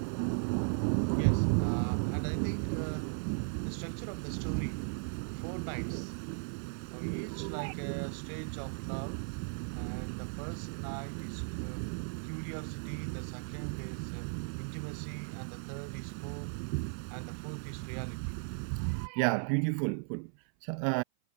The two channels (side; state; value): left; silent; 53 dB below the other